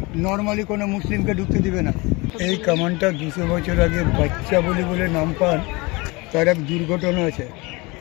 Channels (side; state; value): right; quieter; 25.1 dB